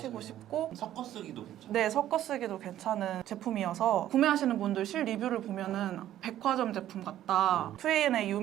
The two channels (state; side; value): quieter; left; 12.4 dB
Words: 싶고 섞어 쓰기도 괜찮아요. 네, 섞어 쓰기도 괜찮은 제품이어서 구매하시는 분들 실 리뷰를 보면은 백화점 제품 같다. 2AN에